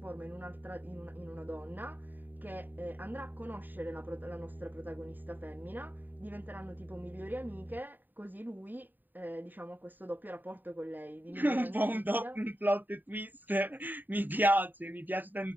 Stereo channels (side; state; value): left; late; 0.090 ms